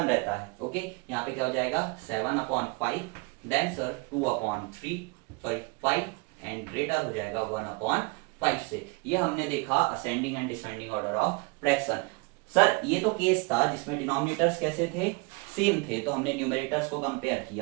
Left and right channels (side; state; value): left; quieter; 28.8 dB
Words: रहता है। ओके, यहाँ पे क्या हो जाएगा 7/5, then sir 2/3, sorry 5 and greater हो जाएगा 1/5 से। ये हमने देखा ascending and descending order of fraction. Sir ये तो केस था जिसमें डिनोमिनेटर्स कैसे थे, सेम थे, तो हमने न्यूमरेटर्स को कंपेयर